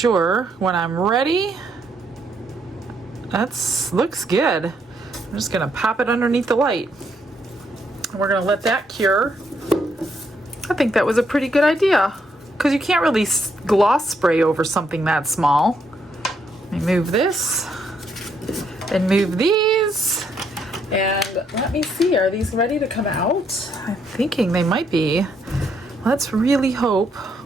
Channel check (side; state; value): both; normal; correlation 0.74